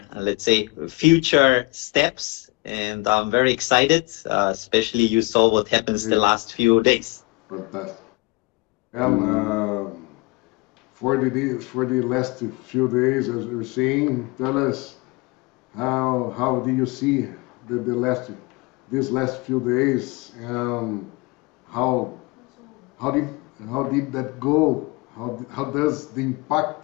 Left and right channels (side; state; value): right; quieter; 24.8 dB